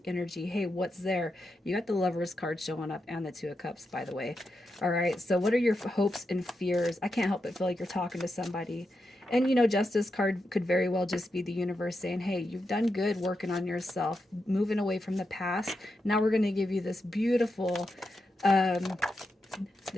energy. Hey, what's there? You got the Lovers card showing up and the Two of Cups, by the way. All right, so what are your hopes and fears? I can't help but feel like you're talking to somebody. And Justice card could very well just be the universe saying, hey, you've done good working on yourself, moving away from the past. Now we're going to give you um,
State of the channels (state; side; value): normal; both; correlation 0.86